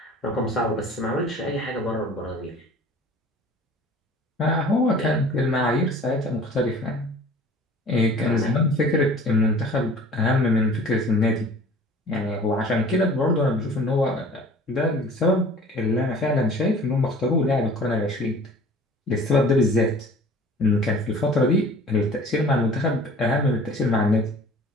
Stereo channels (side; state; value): both; normal; correlation 0.46